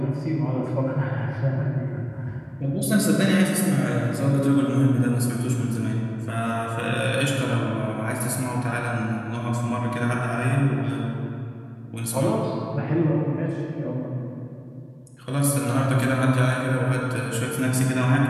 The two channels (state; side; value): identical; both; correlation 1.00